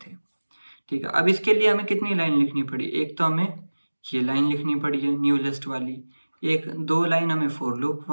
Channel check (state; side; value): inverted; both; correlation -1.00